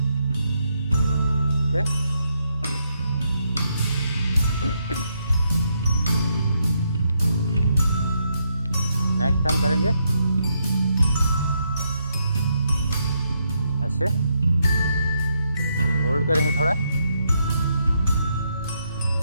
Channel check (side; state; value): both; inverted; correlation -0.79